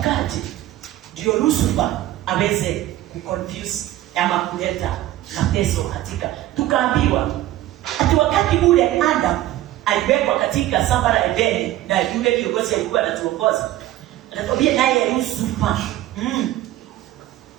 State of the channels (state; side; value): quieter; left; 14.7 dB